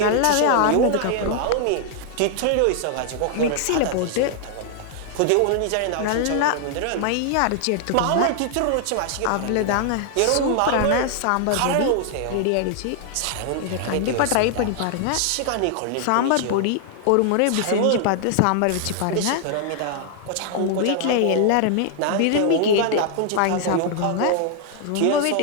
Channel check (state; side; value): different; both; correlation 0.00